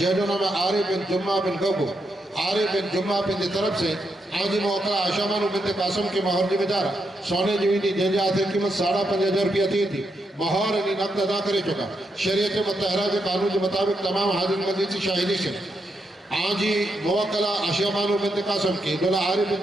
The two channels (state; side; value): normal; both; correlation 0.82